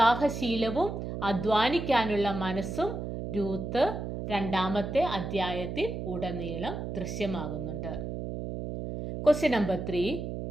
അധ്വാനിക്കാനുള്ള മനസ്സും രൂത്ത് 2-ാമത്തെ അധ്യായത്തിൽ ഉടനീളം ദൃശ്യമാകുന്നുണ്ട്. Question number 3.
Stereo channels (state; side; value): noise; right; hum, 5 dB below the sound